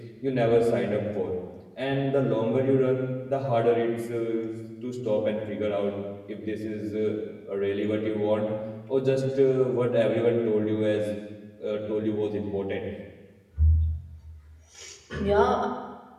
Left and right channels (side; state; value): both; identical; correlation 1.00